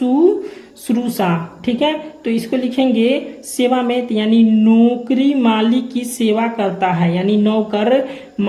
ठीक है, तो इसको लिखेंगे सेवा में, यानी नौकरी मालिक की सेवा करता है, यानी नौकर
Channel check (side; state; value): both; identical; correlation 1.00